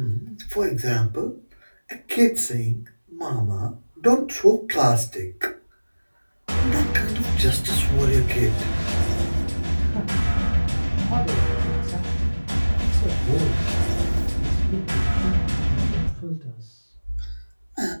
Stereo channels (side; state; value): both; inverted; correlation -1.00